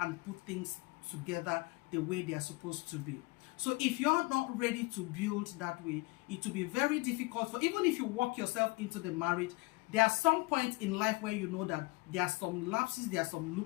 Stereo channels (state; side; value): quieter; right; 24.5 dB